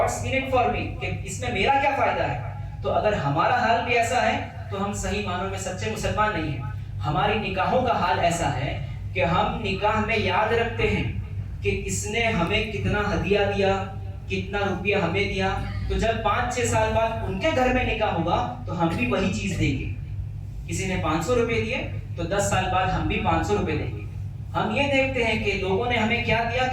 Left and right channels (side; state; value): both; identical; correlation 1.00